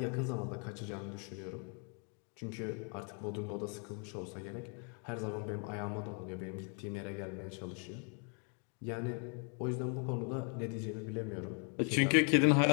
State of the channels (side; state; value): right; quieter; 38.8 dB